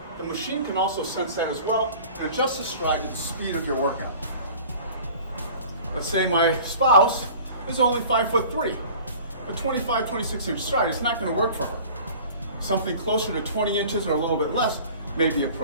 The machine can also sense that as well and adjust the stride to the speed of your workout. Let's say my spouse is only 5'3". A 25, 26 inch stride is not going to work for her. Something closer to 20 inches or a little bit less may be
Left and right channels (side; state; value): both; inverted; correlation -0.44